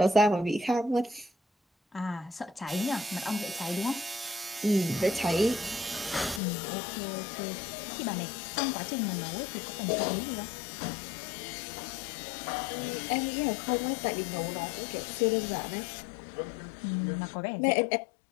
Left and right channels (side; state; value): right; drops out; at 6.4 s